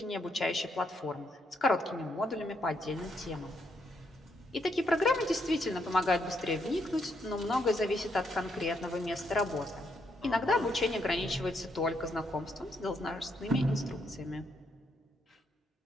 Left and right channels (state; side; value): normal; both; correlation 0.76